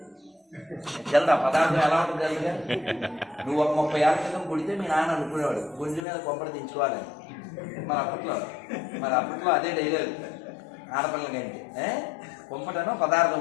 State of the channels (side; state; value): right; drops out; at 6.1 s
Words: తెలదా పదార్థం ఎలా ఉంటుంది తెలుసుగా? నువ్వు ఒక 30 ఏళ్ళ క్రితం కుడితే మీ నాన్న అనుకునేవాడు గుంజు మీద కొంపడి దించుకోవాలని. మరి అప్పట్లో అదే డైలాగ్ ఆడపిల్లకంటే. కొంపటనో పదార్థం